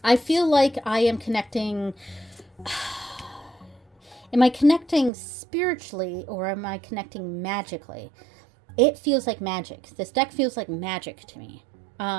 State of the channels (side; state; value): left; drops out; at 5.1 s